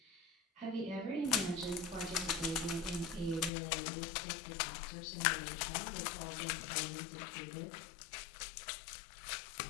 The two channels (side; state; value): right; drops out; at 3.5 s